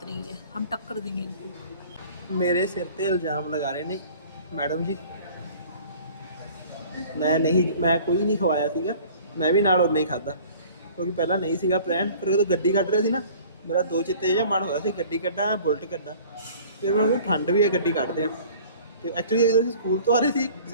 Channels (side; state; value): both; inverted; correlation -0.48